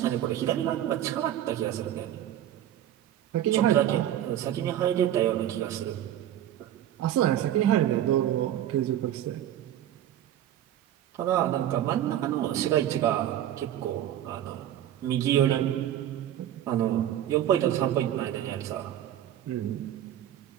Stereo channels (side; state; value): left; quieter; 11.6 dB